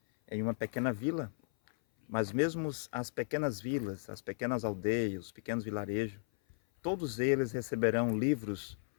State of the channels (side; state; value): right; silent; 54 dB below the other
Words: em uma pequena vila, mas mesmo as pequenas vilas, as pequenas aldeias, os pequenos vilarejos, todos eles receberão livros